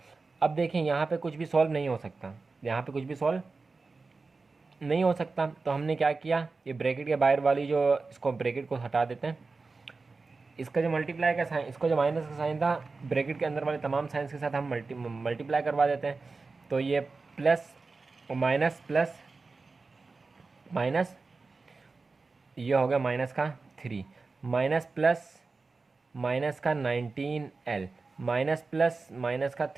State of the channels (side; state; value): left; quieter; 4.0 dB